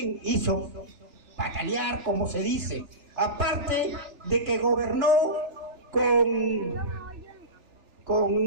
hizo patalear, como se dice. Aparte de que gobernó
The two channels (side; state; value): left; late; 3.4 ms